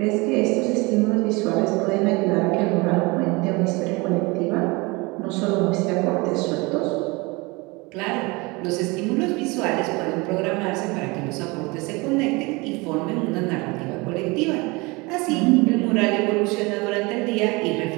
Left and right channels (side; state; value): left; quieter; 25.5 dB